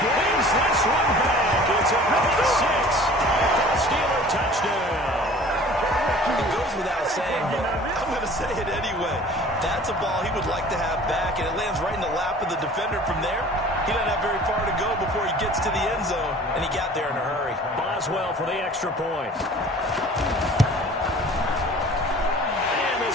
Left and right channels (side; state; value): both; normal; correlation 0.46